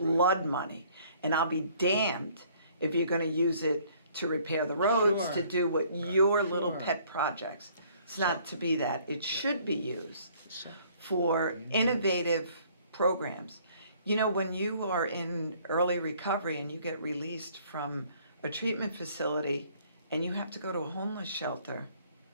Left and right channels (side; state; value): both; inverted; correlation -0.59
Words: money. And I'll be damned if you're gonna use it to repair the roads, Sure. to do what your little Sure. pet projects. It's not to be that. It should be used So, for innovative programs. When you are in early recovery and you get released from a treatment facility and you have to go to a homeless shelter